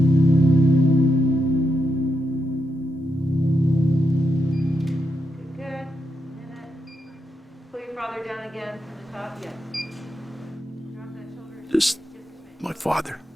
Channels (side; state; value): both; normal; correlation 0.84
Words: Good. Pull your father down again from the top. Yes. Drop that shoulder. Just my father.